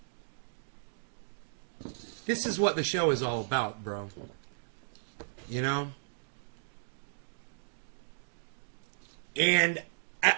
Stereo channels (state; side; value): silent; left; digital silence